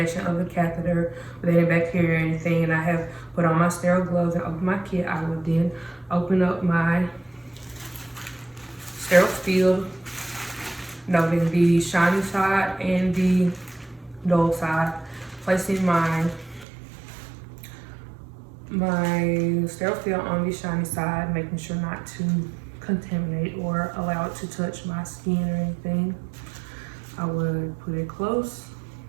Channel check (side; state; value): left; drops out; at 16.7 s